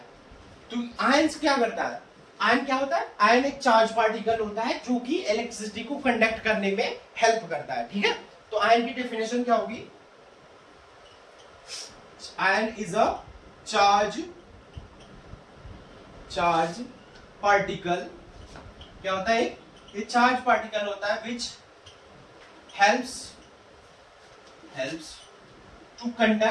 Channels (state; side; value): identical; both; correlation 1.00